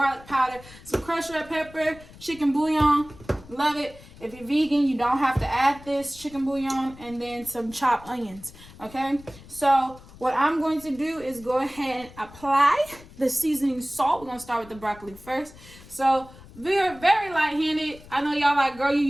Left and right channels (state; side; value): noise; left; rumble, 20 dB below the sound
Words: powder, some crushed red pepper, chicken bouillon. Love it. If you're vegan, you don't have to add this chicken bouillon, and then some chopped onions. Okay, so what I'm going to do is go ahead and apply the seasoning salt. We're going to start with the broccoli first. So we're very light-handed. I know y'all like, girl, you're